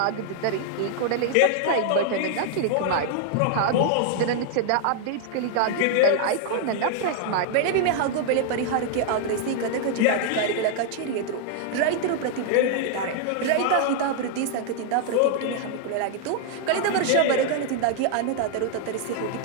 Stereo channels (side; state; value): both; different; correlation 0.00